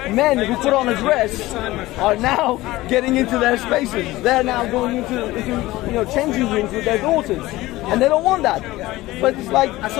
men who put on a dress are now getting into their spaces. They're now going into changing rooms with their daughters. And they don't want that. But it's like... I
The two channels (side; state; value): right; quieter; 18.1 dB